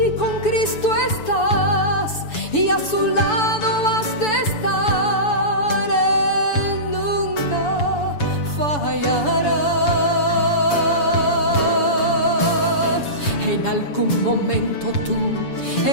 con Cristo estás y a su lado has de estar, Él nunca fallará. En algún momento tú,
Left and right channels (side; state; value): right; late; 7.0 ms